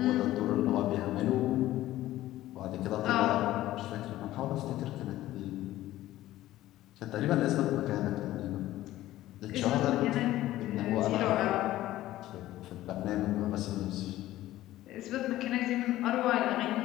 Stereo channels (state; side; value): quieter; right; 15.1 dB